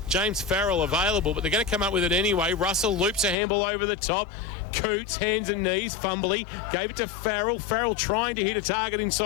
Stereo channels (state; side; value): drops out; right; at 3.4 s